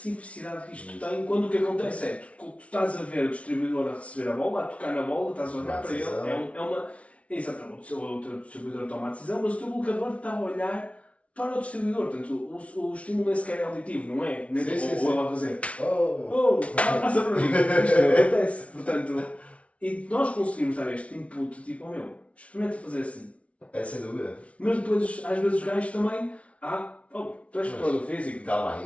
que isto tem quando o que acontece é tu estás a ver o distribuidor a receber a bola, a tocar na bola, estás a olhar para ele. Exatamente, o teu distribuidor toma a decisão, mas o teu bloqueador está a olhar para o distribuidor. Portanto, o estímulo nem sequer é auditivo, não é? Nem ou ele a fazer. Passa para mim. Isto não acontece. Portanto, e nós conseguimos dar este input tipo, experimenta fazer assim. É sem dúvida. Mas depois, às vezes, os gajos também. Tu és preparador físico. Calma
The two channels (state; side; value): late; right; 0.063 ms